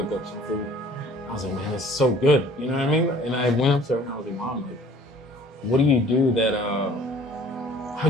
cook up some food. I was like, man, this is so good. You know what I mean? And I went up to her and I was like, Mom, like, what do you do that,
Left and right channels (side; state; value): both; normal; correlation 0.52